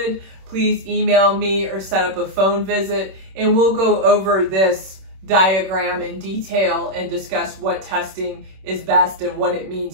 please email me or set up a phone visit, and we'll go over this diagram in detail and discuss what testing is best and what it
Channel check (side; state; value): left; late; 26 ms